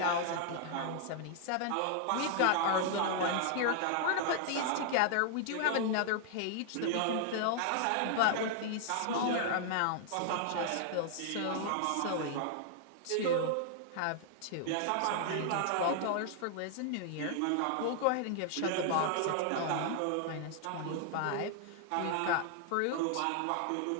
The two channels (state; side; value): different; both; correlation -0.01